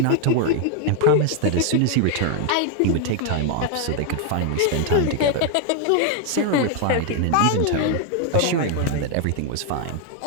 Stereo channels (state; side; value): different; both; correlation 0.00